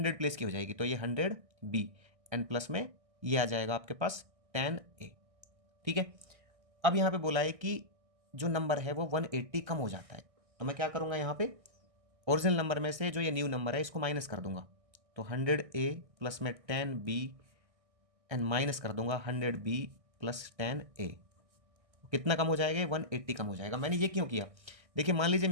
प्लेस की हो जाएगी, तो ये 100B एन प्लस में ये आ जाएगा आपके पास 10A। ठीक है। अब यहाँ पे बोला है कि जो नंबर है वो 180 कम हो जाता है। तो मैं क्या करूँगा, यहाँ पे ओरिजिनल नंबर में से जो ये न्यू नंबर है इसको माइनस कर दूंगा। तो 100A प्लस में 10B एंड माइनस कर दूंगा 100B प्लस 10A। कितना कम हो जाएगा, 180 कम हो जाएगा। मैंने ये क्यों किया, देखिए मान लीजिए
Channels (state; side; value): late; left; 1.6 ms